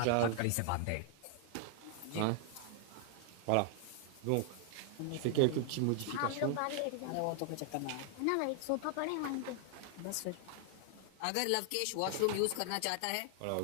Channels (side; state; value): both; different; correlation 0.00